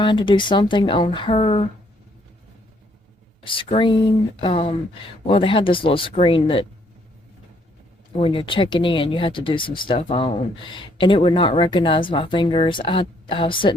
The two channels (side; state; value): both; normal; correlation 0.68